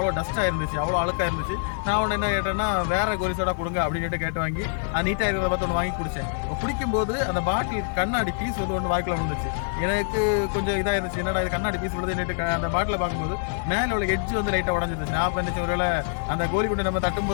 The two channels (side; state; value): right; silent; 58 dB below the other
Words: டஸ்ட்டாக இருந்துச்சு, அவ்வளோ அழுக்காக இருந்துச்சு. நான் ஒன்று என்ன கேட்டேன்னா, வேற கோலி சோடா கொடுங்க அப்படின்னு சொல்லிட்டு கேட்டு வாங்கி நீட்டாக இருக்கிறத பார்த்து ஒன்று வாங்கி குடித்தேன். குடிக்கும்போது அந்த பாட்டில் கண்ணாடி பீஸ் வந்து ஒன்று வாய்க்குள்ள விழுந்துச்சு. எனக்கு கொஞ்சம் இதாக இருந்துச்சு, என்னடா இது கண்ணாடி பீஸ் விழுது. அந்த பாட்டில் பார்க்கும்போது மேலே உள்ள எட்ஜ் வந்து லைட்டாக உடஞ்சிருந்துச்சு. நான் பண்ணிச்சு ஒருவேளை அந்த கோலி குண்டை நம்ம